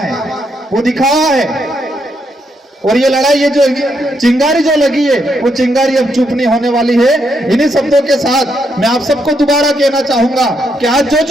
वो दिखावा है। और ये लड़ाई, ये जो चिंगारी जो लगी है, वो चिंगारी अब चुप नहीं होने वाली है। इन्हीं शब्दों के साथ मैं आप सबको दोबारा कहना चाहूंगा कि आज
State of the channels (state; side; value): normal; both; correlation 0.78